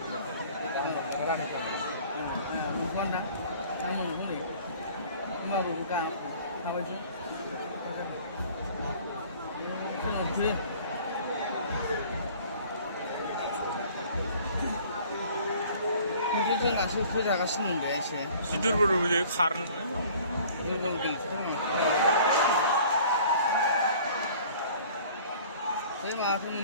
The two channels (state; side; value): inverted; both; correlation -0.50